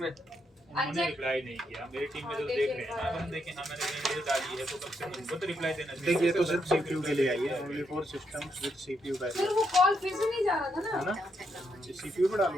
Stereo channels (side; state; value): both; normal; correlation 0.79